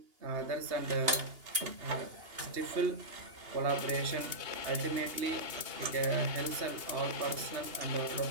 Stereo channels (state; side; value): late; left; 2.8 ms